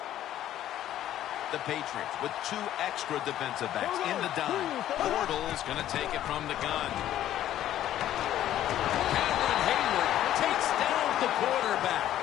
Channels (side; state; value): right; quieter; 12.3 dB